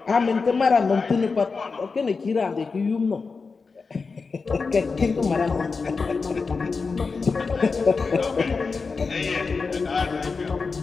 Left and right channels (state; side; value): quieter; right; 4.6 dB